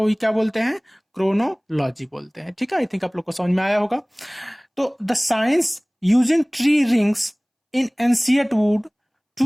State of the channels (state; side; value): identical; both; correlation 1.00